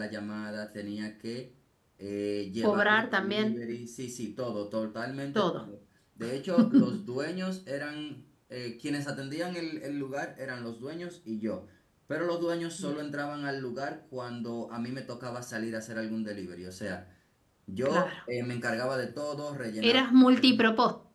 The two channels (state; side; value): identical; both; correlation 1.00